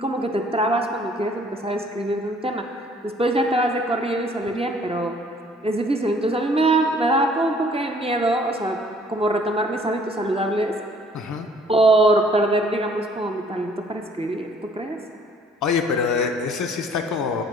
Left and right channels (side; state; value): both; normal; correlation 0.58